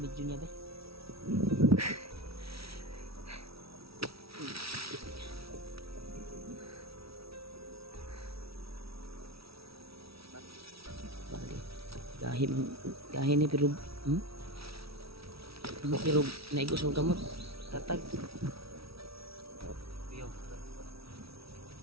video niya ba. Gahin ni pero pero naigos ang kamot tatag Yo.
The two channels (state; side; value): late; left; 0.76 ms